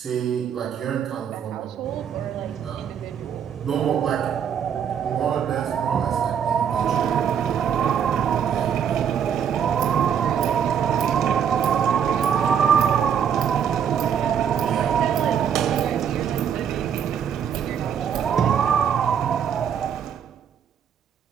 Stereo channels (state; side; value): quieter; left; 8.2 dB